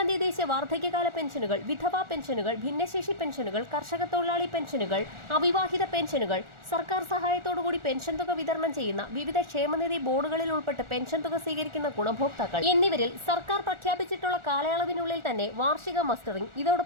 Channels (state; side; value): late; left; 1.4 ms